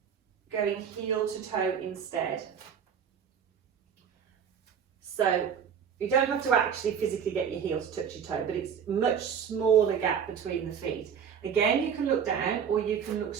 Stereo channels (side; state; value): left; quieter; 7.6 dB